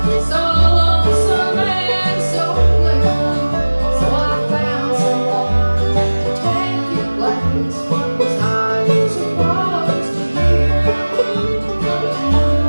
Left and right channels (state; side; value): inverted; both; correlation -1.00